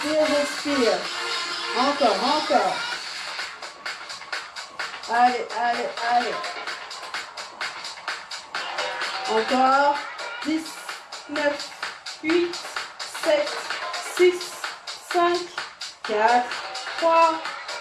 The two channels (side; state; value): both; identical; correlation 1.00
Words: j'expire. Encore. Allez. Encore. 10, 9, 8, 7, 6, 5, 4, 3,